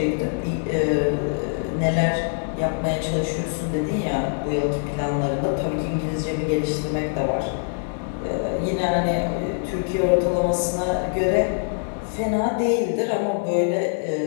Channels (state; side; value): silent; right; digital silence